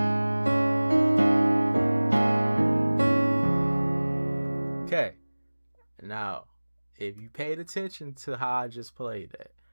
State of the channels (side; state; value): both; inverted; correlation -1.00